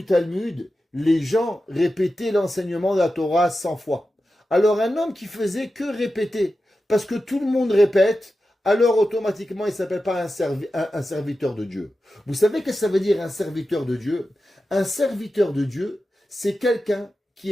Talmud, les gens répétaient l'enseignement de la Torah 100 fois. Alors un homme qui faisait que répéter, parce que tout le monde répète, alors automatiquement il ne s'appelle pas un serviteur de Dieu. Vous savez ce que ça veut dire un serviteur de Dieu? Un serviteur de Dieu, c'est quelqu'un qui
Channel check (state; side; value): normal; both; correlation 0.92